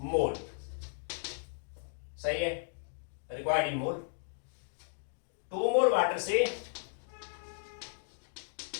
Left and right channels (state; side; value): silent; right; digital silence